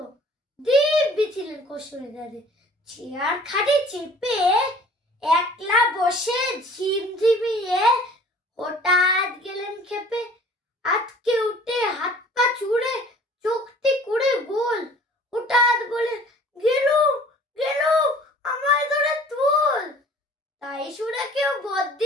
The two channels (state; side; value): normal; both; correlation 0.50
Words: দিব্যি ছিলেন কসুরিদারে, চেয়ার খাটে চেপে একলা বসে ঝিমঝিমিয়ে হঠাৎ গেলেন খেপে। আজকে উঠে হাত পা চুড়ে চোখটি করে গোল, হঠাৎ বলে গেলুম গেলুম আমায় ধরে তুল। তাই শুনে কেউ